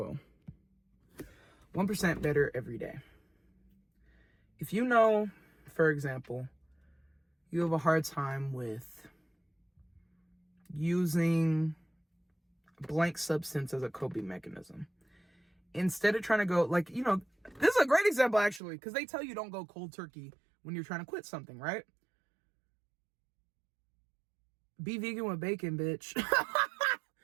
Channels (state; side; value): drops out; left; at 18.6 s